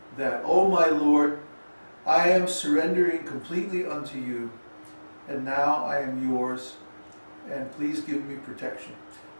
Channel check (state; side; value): inverted; both; correlation -1.00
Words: that, oh my Lord, I am surrendering completely unto you, and now I am yours, and please give me protection.